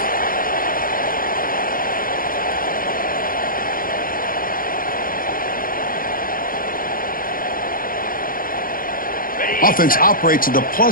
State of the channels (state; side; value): late; right; 0.41 ms